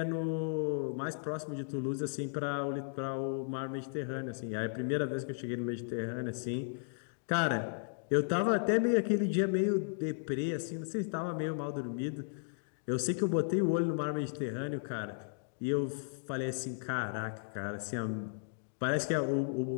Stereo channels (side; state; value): right; silent; digital silence